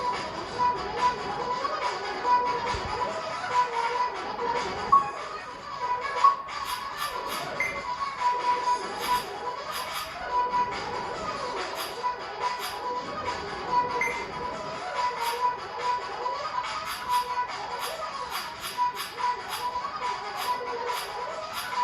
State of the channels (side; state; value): both; identical; correlation 1.00